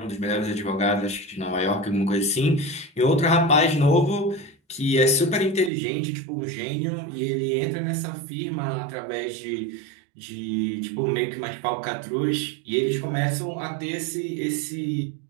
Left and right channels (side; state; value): left; drops out; at 5.7 s